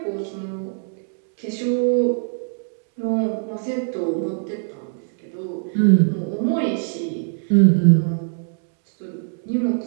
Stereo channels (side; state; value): left; silent; digital silence